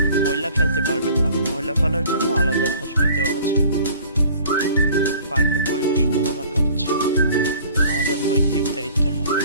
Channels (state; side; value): inverted; both; correlation -0.49